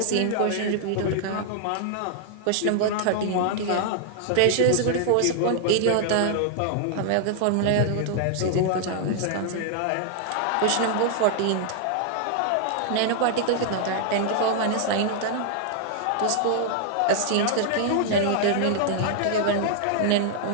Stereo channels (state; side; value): different; both; correlation -0.01